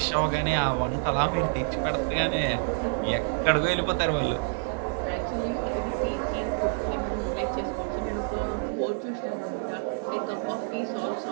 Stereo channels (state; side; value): silent; left; 59 dB below the other